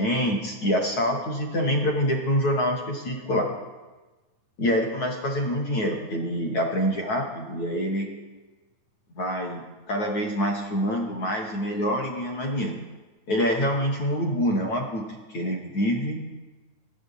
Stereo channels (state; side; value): late; right; 9.2 ms